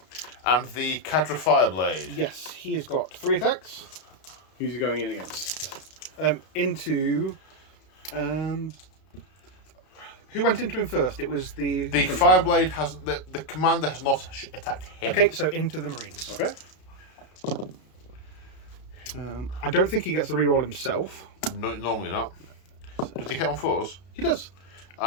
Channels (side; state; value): right; late; 32 ms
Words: And the Cadra Fireblade. yes, he has got 3 attacks. Who's he going in against? Into. Who went into him first? It was the. The Fireblade has. The commander has not attacked him. Okay, so into the Marines. Okay. I don't think he gets the reroll himself. No, normally not. Does he hit on 4s? He does.